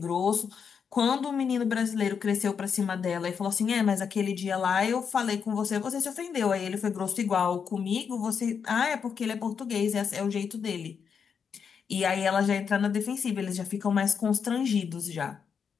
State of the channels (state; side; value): quieter; right; 6.6 dB